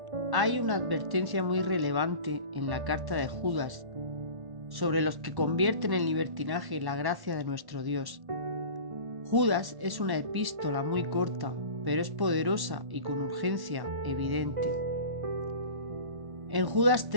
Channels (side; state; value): left; late; 1.1 ms